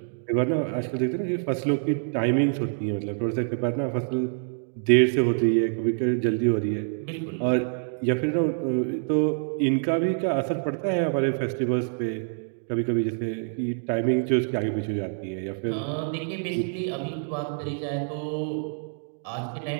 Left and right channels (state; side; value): silent; left; digital silence